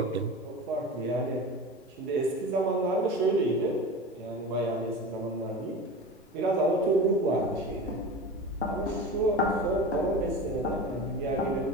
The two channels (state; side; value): normal; both; correlation 0.31